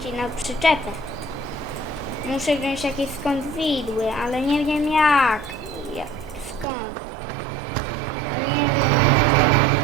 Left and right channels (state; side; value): drops out; left; at 6.7 s